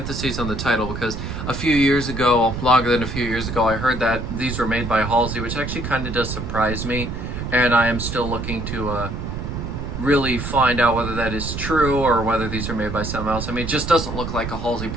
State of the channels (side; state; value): right; noise; rumble, 5 dB below the sound